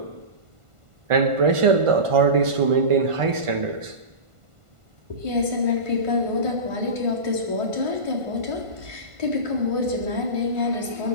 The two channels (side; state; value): left; late; 1.5 ms